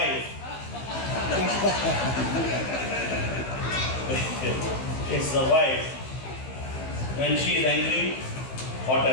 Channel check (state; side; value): late; right; 15 ms